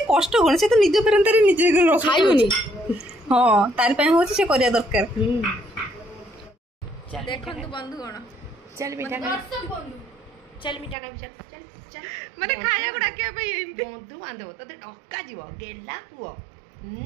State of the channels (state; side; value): drops out; left; at 11.0 s